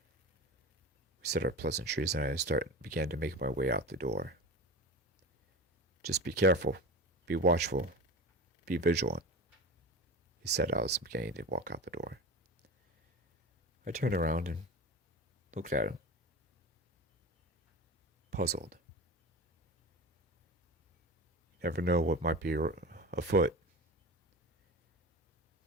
We said our pleasantries, and I began to make my way out the door. "Just be careful. Be watchful. be vigilant, he said as I was beginning to walk out the door. I turned around and looked at him, puzzled. You never know what might be afoot.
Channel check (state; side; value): normal; both; correlation 0.29